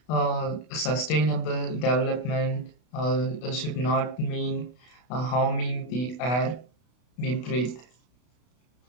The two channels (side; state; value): right; late; 32 ms